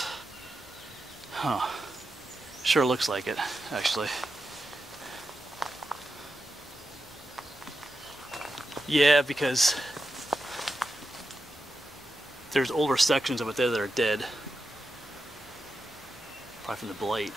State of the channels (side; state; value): both; normal; correlation 0.88